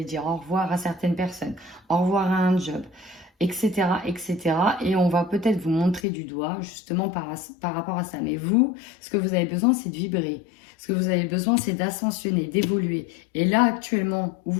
dire au revoir à certaines personnes, au revoir à un job, etc., etc. Et on va peut-être vous montrer du doigt justement par rapport à ça. Mais vous, ce que vous avez besoin, c'est de vibrer. Ce que vous avez besoin, c'est d'ascensionner, d'évoluer. Et là, actuellement, où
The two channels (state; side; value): drops out; right; at 6.0 s